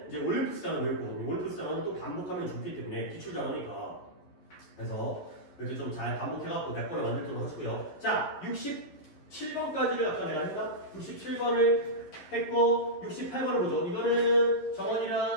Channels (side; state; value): right; late; 11 ms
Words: 이제 올림푸스 단어 외울 거거든요. 올림푸스 단어는 또 반복하면 좋기 때문에 기출 단어니까 그래서 이렇게 좀 잘 반복해갖고 몇 번을 만들도록 하시고요. 자, 67번까지를 아까 내가 했나? 67번을 했고 68번을 보죠. 이거는